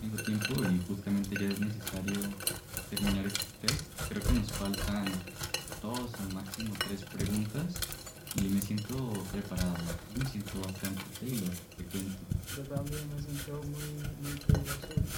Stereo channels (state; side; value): identical; both; correlation 1.00